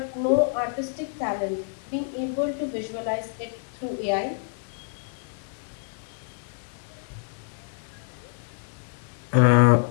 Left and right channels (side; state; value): right; silent; digital silence